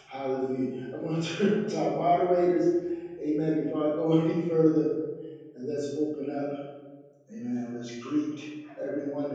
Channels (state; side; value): identical; both; correlation 1.00